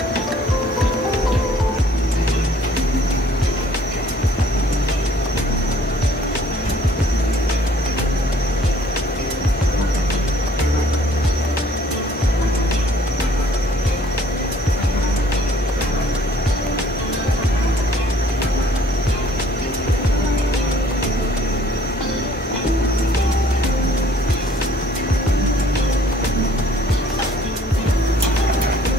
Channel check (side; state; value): both; normal; correlation 0.58